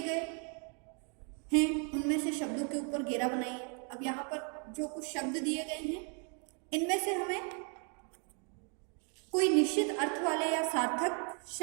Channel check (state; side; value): quieter; left; 38.6 dB